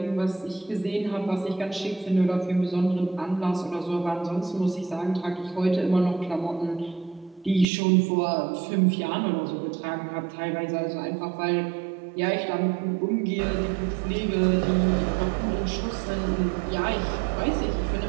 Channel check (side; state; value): left; drops out; at 7.7 s